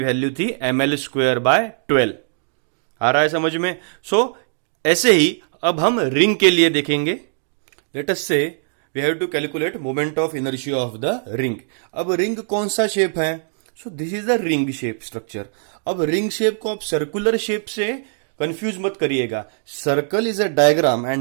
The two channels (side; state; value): left; silent; digital silence